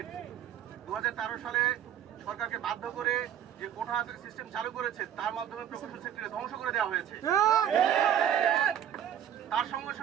2013 সালে সরকারকে বাধ্য করে যে কোটা সিস্টেম চালু করেছে, তার মাধ্যমে প্রকৌশল সেক্টরে ধ্বংস করে দেওয়া হয়েছে। তার সঙ্গে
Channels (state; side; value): quieter; left; 10.0 dB